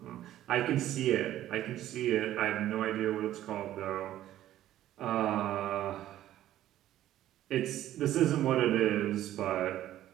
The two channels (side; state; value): left; quieter; 13.0 dB